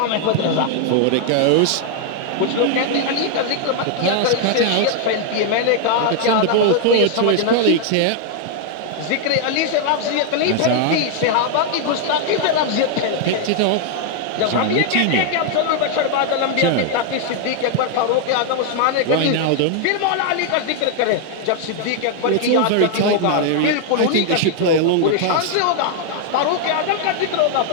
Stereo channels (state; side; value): different; both; correlation 0.00